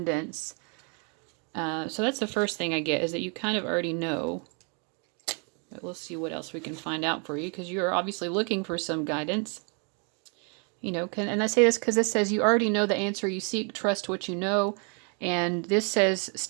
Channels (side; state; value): left; quieter; 37.7 dB